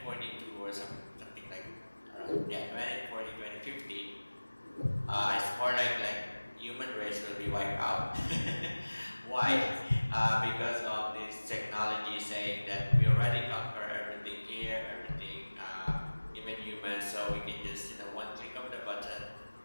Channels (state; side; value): inverted; both; correlation -1.00